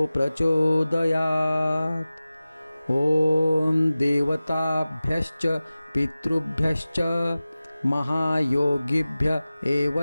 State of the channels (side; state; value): both; inverted; correlation -0.97